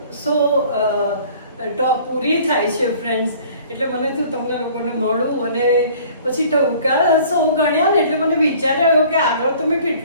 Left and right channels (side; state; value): both; inverted; correlation -0.51